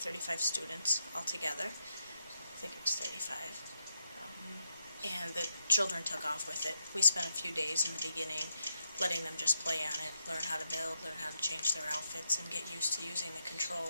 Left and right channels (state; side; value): inverted; both; correlation -0.81